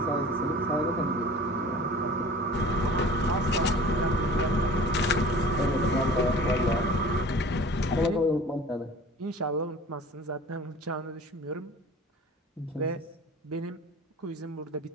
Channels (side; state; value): both; normal; correlation 0.43